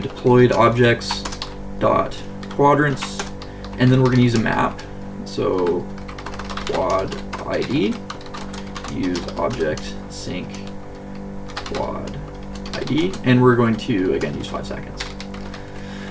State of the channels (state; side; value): identical; both; correlation 1.00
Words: objects dot quadrants, and then we're going to use a map. So quad ID, use object sync quad ID, and we're going to again use 5 seconds.